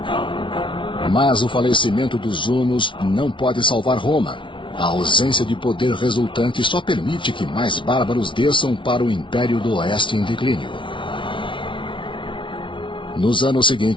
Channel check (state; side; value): late; right; 0.24 ms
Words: Mas o falecimento dos hunos não pode salvar Roma. A ausência de poder resultante só permite que mais bárbaros desçam para o Império do Oeste em declínio. Nos anos